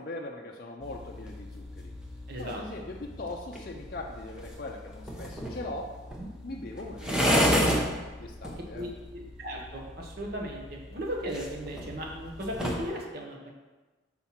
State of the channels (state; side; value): normal; both; correlation 0.47